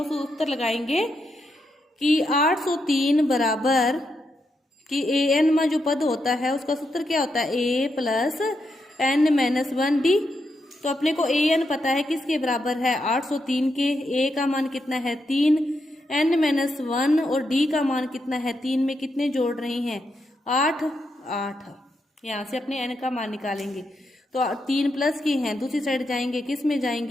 सूत्र लगाएंगे कि 803 बराबर कि an में जो पद होता है उसका सूत्र क्या होता है a plus n minus 1 d। तो अपने को an पता है किसके बराबर है 803 के, a का मान कितना है 3, n माइनस 1 और d का मान कितना है 3 में कितने जोड़ रहे हैं 8। यहाँ से अपने n का मान निकालेंगे। तो 3 प्लस की हैं, दूसरी साइड जाएंगे, किस में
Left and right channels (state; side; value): normal; both; correlation 0.82